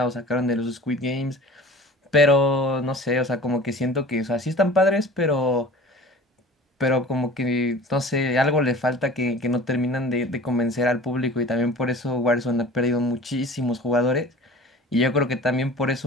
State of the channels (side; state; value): both; normal; correlation 0.42